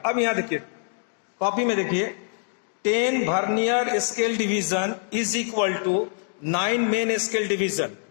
अब यहां देखिए कॉपी में देखिए, 10 vernier scale division is equal to 9 main scale division.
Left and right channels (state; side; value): silent; right; digital silence